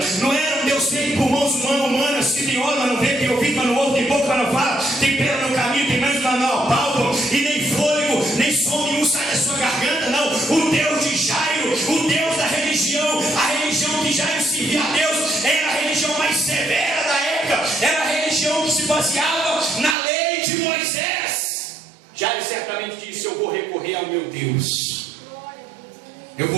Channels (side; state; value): left; drops out; at 20.0 s